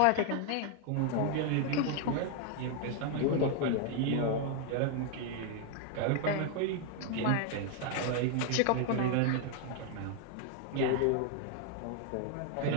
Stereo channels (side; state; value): both; different; correlation 0.00